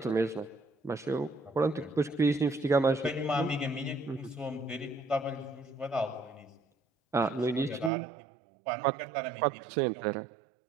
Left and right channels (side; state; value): left; drops out; at 7.9 s